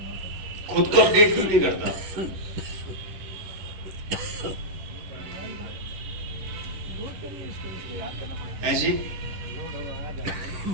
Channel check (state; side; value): late; left; 11 ms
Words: खुद को अपडेट क्यों नहीं करता? ऐसी